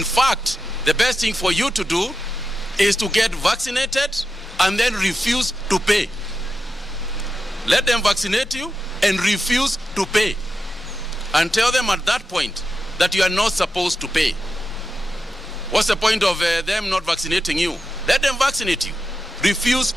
fact, the best thing for you to do is to get vaccinated and then refuse to pay. Let them vaccinate you and refuse to pay. And tell them at that point that you are not supposed to pay. What's the point of them not vaccinating you? Let them vaccinate you. Refuse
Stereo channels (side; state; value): both; normal; correlation 0.89